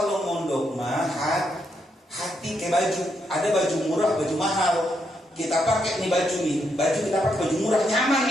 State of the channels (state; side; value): normal; both; correlation 0.79